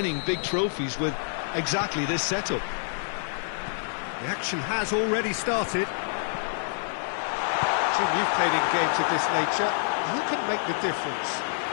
big trophies with exactly this setup. The action has already started. Jim, you've played in games of this nature. Who can make the difference?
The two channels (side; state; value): right; silent; digital silence